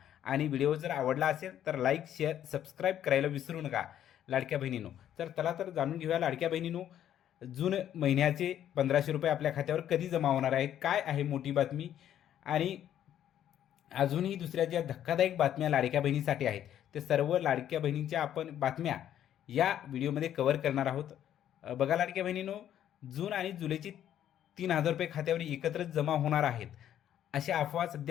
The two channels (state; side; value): quieter; right; 10.8 dB